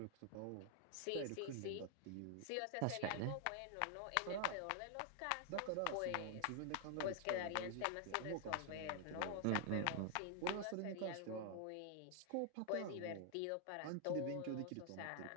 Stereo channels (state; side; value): different; both; correlation 0.00